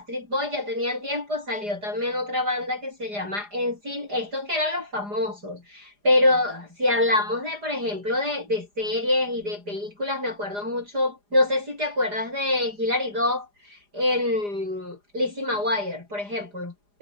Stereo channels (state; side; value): late; left; 4.9 ms